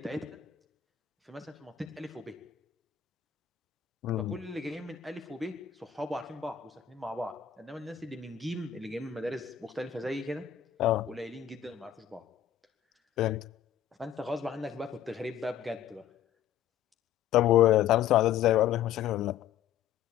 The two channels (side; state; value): right; quieter; 9.7 dB